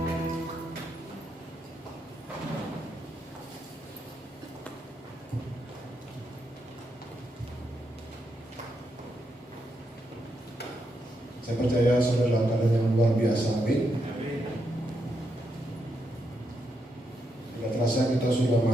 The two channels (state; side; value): normal; both; correlation 0.81